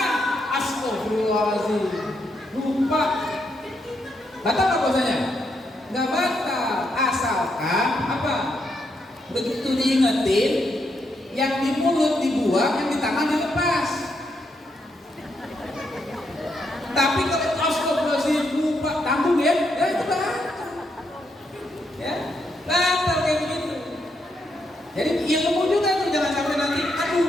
Astagfirullahaladzim. Lupa. Batal apa puasanya? Nggak batal. Asalkan apa? Begitu diingetin, yang di mulut dibuang, yang di tangan dilepas. Tapi kalau astagfirullahaladzim lupa, tanggung ya itu batal. Ya, batal kayak begitu. Jadi ilmu juga tuh, jangan sampai nanti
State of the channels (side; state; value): both; normal; correlation 0.79